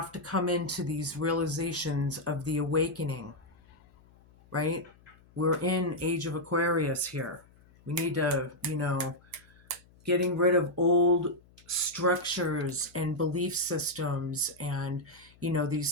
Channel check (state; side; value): noise; left; hum, 28 dB below the sound